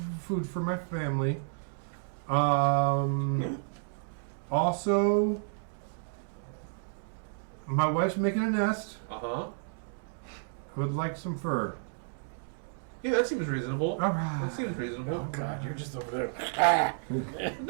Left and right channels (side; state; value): left; silent; digital silence